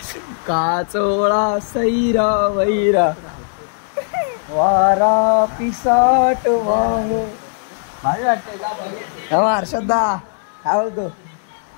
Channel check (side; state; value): right; silent; 66 dB below the other